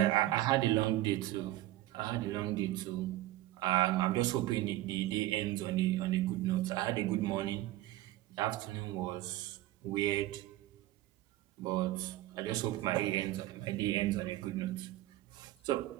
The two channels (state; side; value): quieter; left; 15.9 dB